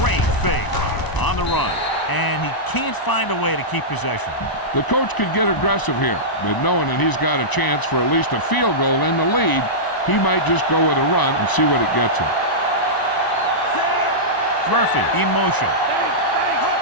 Great fake on the run. And he can't find a way to keep possession. The coach could get aggressive here, but knowing that he's got a chance for at least a field goal in the lead, he might just go with a run and see what it gets him. Murphy in motion.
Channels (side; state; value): right; late; 1.0 ms